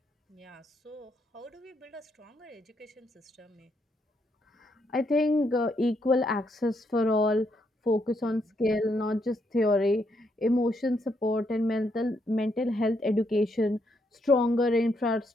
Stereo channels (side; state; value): both; normal; correlation 0.76